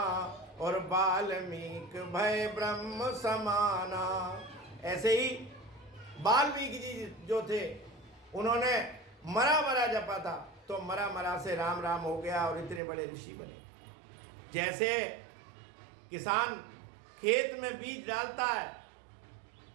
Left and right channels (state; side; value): drops out; left; at 12.8 s